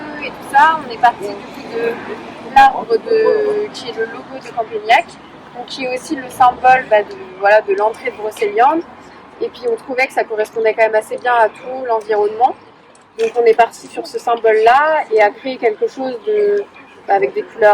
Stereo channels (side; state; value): both; identical; correlation 1.00